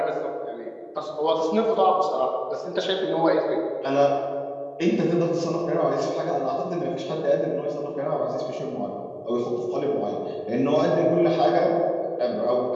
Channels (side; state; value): both; identical; correlation 1.00